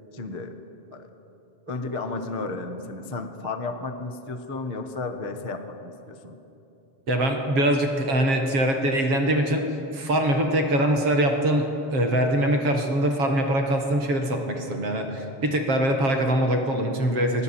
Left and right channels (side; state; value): left; late; 7.4 ms